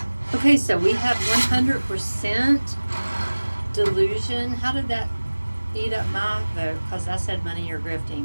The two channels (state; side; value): inverted; both; correlation -1.00